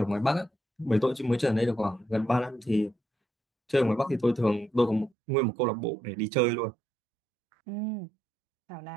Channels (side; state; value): left; drops out; at 5.1 s